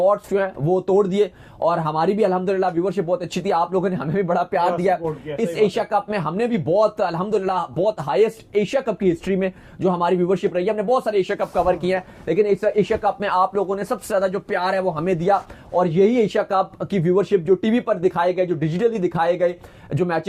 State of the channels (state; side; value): identical; both; correlation 1.00